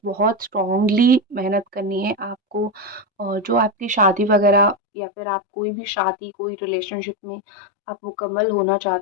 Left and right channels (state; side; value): drops out; right; at 4.8 s